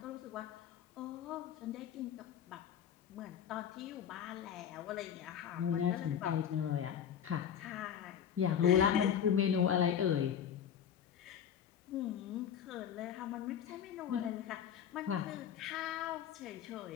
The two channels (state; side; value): quieter; right; 8.8 dB